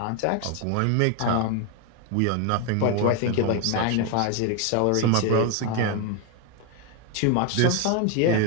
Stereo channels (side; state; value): both; different; correlation 0.01